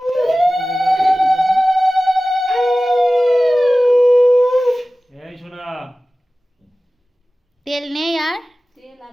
তেল নেই আর তেল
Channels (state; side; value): normal; both; correlation 0.97